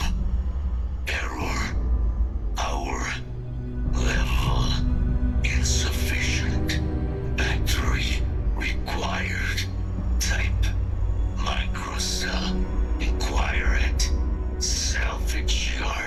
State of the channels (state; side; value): identical; both; correlation 1.00